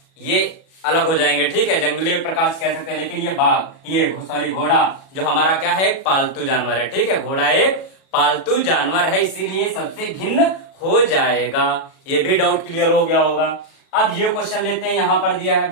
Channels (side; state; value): right; late; 37 ms